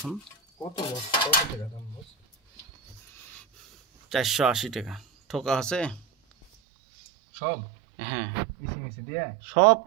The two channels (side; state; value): left; drops out; at 6.5 s